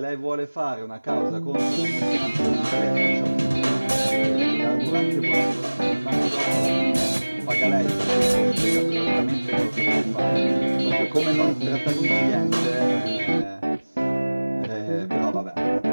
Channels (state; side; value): inverted; both; correlation -1.00